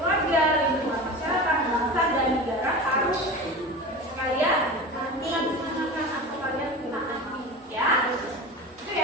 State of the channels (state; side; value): normal; both; correlation 0.29